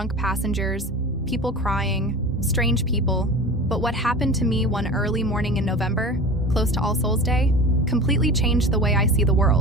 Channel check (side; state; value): both; normal; correlation 0.33